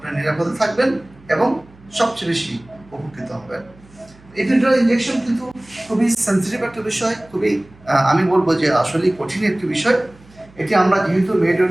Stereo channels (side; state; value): right; noise; hum, 26 dB below the sound